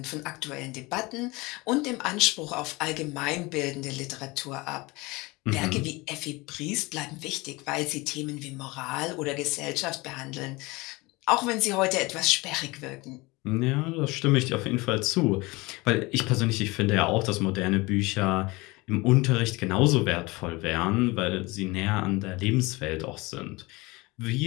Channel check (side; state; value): right; quieter; 23.4 dB